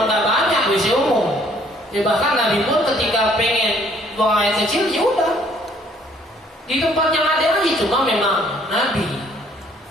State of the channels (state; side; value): normal; both; correlation 0.62